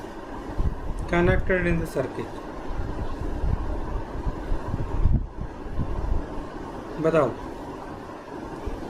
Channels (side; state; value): both; identical; correlation 1.00